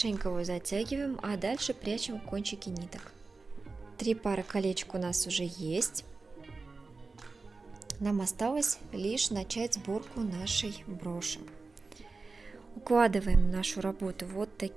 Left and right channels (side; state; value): left; quieter; 3.9 dB